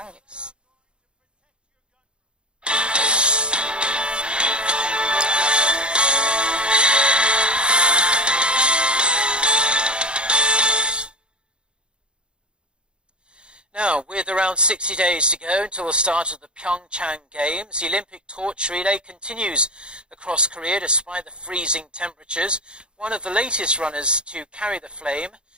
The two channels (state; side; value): late; left; 0.054 ms